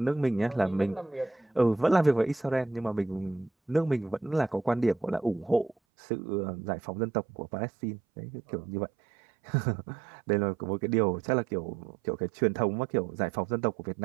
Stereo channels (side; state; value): left; drops out; at 5.8 s